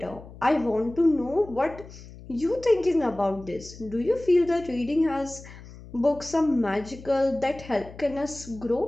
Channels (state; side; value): noise; left; hum, 17 dB below the sound